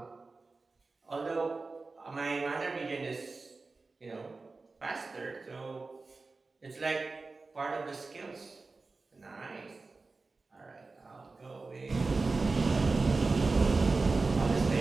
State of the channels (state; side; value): quieter; left; 3.8 dB